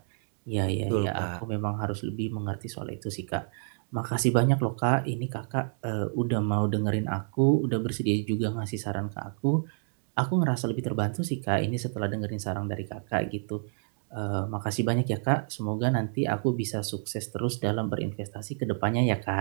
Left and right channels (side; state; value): left; silent; digital silence